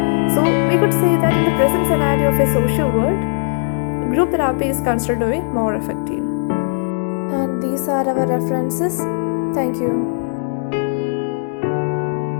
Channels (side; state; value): right; silent; 64 dB below the other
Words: So we could say that in the present scenario of a social world, group therapy is considered to be more effective. And these are our references. Thank you.